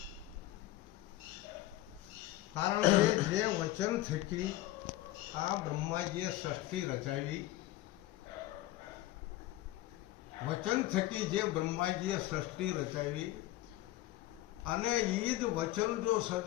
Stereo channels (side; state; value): right; quieter; 16.2 dB